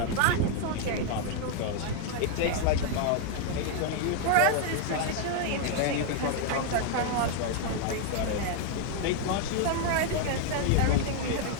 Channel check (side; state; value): both; different; correlation 0.00